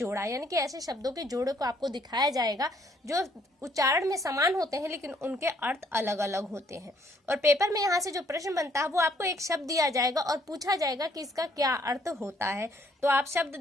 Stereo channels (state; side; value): normal; both; correlation 0.65